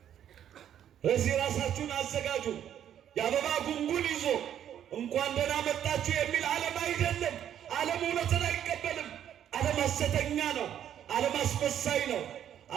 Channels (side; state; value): left; quieter; 10.1 dB